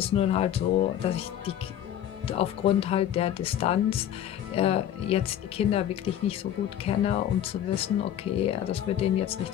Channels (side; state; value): right; quieter; 10.7 dB